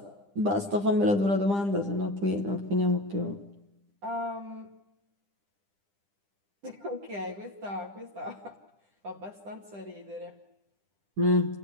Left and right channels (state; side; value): late; left; 10 ms